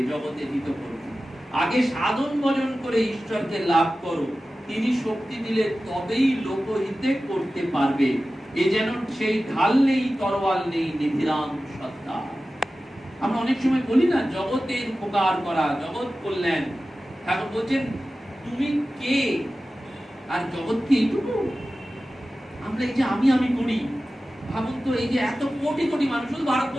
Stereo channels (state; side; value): normal; both; correlation 0.95